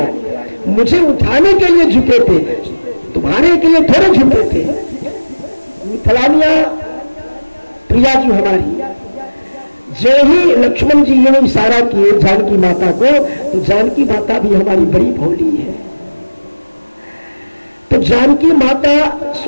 मुझे उठाने के लिए झुके थे, तुम्हारे के लिए थोड़े झुके थे। मिथिलानिया प्रिया जी हमारी, जो ही लक्ष्मण जी ने इशारा किए जानकी माता को, तो जानकी माता भी हमारी बड़ी भोली है। तो जानकी माता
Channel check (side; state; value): both; inverted; correlation -1.00